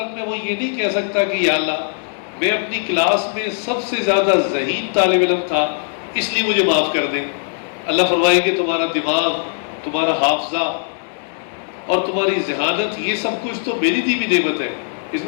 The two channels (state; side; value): silent; right; digital silence